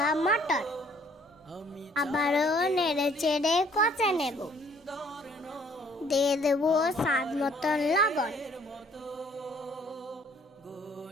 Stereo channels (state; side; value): normal; both; correlation 0.60